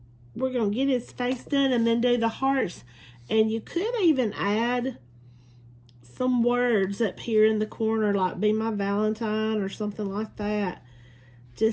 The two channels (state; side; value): identical; both; correlation 1.00